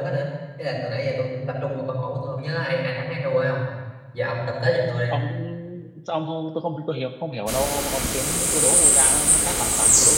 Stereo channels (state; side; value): identical; both; correlation 1.00